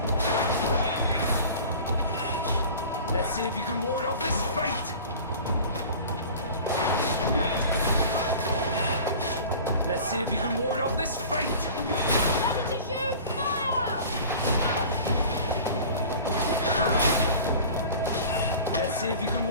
Let's see if you can ward off this fate! Let's see if you can ward off this fate! Ready to shoot! Fire! Let's see if you can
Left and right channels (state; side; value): inverted; both; correlation -0.40